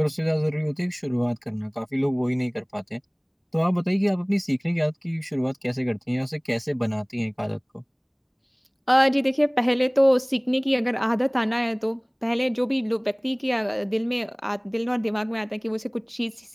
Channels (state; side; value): identical; both; correlation 1.00